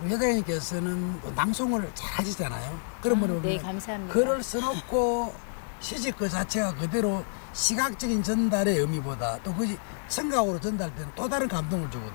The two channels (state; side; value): silent; right; digital silence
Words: 회장님께서는 또 낭송을 잘 하시잖아요. 그런 분을 네, 보면 감사합니다. 글을 써놓고 시집 그 자체가 그대로 시각적인 전달의 의미보다 또 그것이 청각으로 전달되는 또 다른 감동을